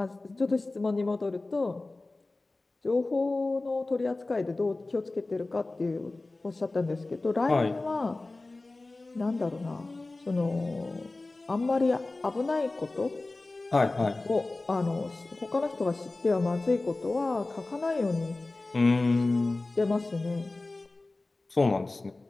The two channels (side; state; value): right; quieter; 3.1 dB